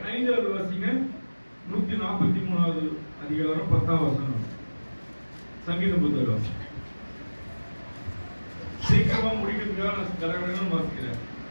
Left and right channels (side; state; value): both; inverted; correlation -1.00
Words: வாசிங்க. 143வது அதிகாரம் 10வது வசனம். சங்கீத புத்தகம். சீக்கிரமா முடிக்கிறதுக்காக நான் கடகடன்னு வாசிக்கிறேன்.